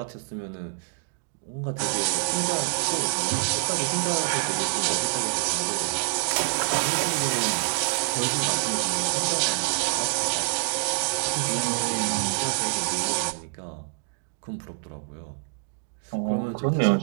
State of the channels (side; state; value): left; silent; digital silence